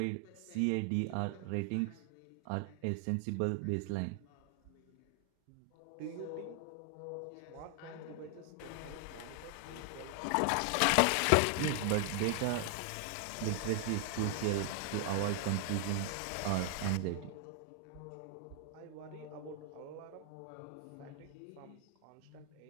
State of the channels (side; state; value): both; different; correlation 0.00